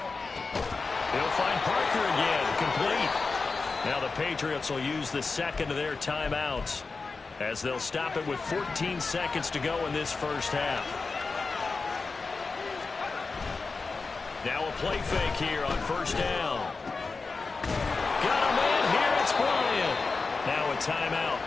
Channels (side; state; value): right; quieter; 4.2 dB